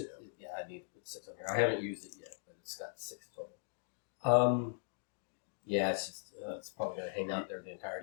Yeah, I need to put 6 on here. I haven't used it yet, but it's got 6 total. Yeah, it's just it's probably going to hang out there the entire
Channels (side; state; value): right; silent; digital silence